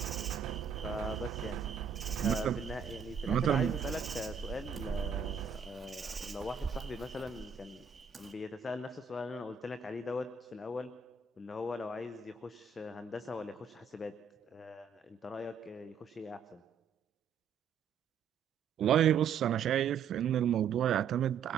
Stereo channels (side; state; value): left; quieter; 6.5 dB